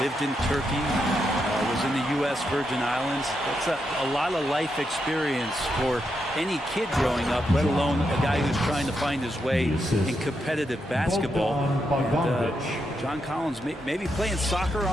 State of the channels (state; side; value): normal; both; correlation 0.83